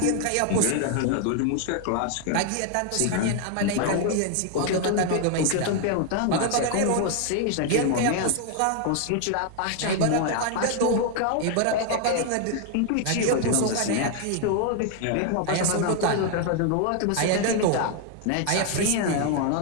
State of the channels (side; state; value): both; different; correlation 0.00